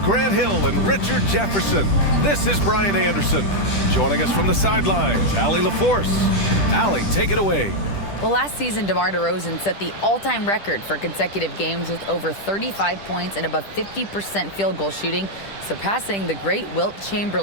Grant Hill and Richard Jefferson. This is Brian Anderson. Joining us from the sidelines, Allie LaForce. Allie, take it away. Well, last season, DeMar DeRozan set the all-time record for consecutive games with over 35 points and above 50% field goal shooting, surpassing the great Wilt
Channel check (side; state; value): right; late; 10 ms